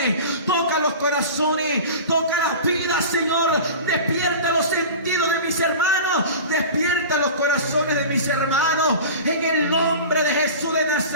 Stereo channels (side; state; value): both; inverted; correlation -0.34